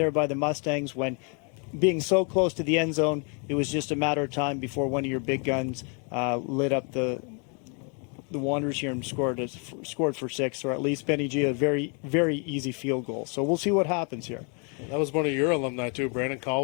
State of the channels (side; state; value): right; quieter; 36.9 dB